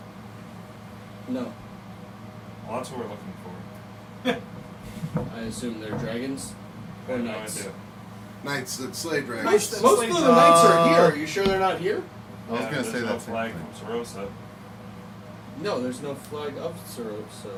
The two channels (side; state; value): both; identical; correlation 1.00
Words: No. Well, that's what we're looking for. I assume they're dragons I or have no knights. idea. Knights that slay dragons. Most slay of the knights are here. Uh, Are you sure they're not here? I was Yeah, gonna say there's no that same flag thing. from Sarosa. No, there's no flag of Sarosa.